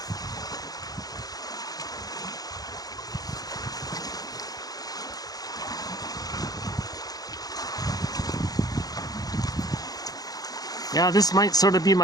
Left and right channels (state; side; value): late; right; 0.18 ms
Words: yeah, this might sort of be